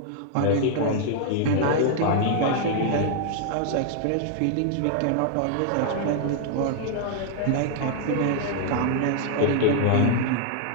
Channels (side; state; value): both; different; correlation 0.00